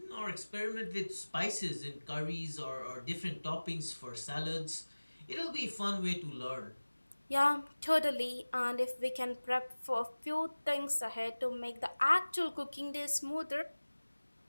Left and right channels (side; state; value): both; inverted; correlation -1.00